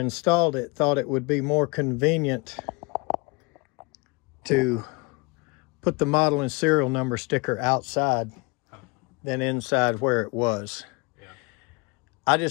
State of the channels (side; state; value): right; quieter; 27.4 dB